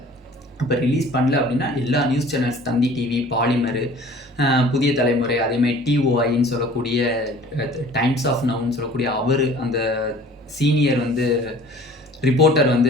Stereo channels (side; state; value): both; normal; correlation 0.48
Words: இப்போ ரிலீஸ் பண்ணல அப்படின்னா எல்லா நியூஸ் சேனல்ஸ், தந்தி டிவி, பாலிமர், புதிய தலைமுறை, அதேமாதிரி டிஓஐன்னு சொல்லக்கூடிய டைம்ஸ் ஆஃப் நவுன்னு சொல்லக்கூடிய அவர் அந்த சீனியர் வந்து ரிப்போர்ட்டர் வந்து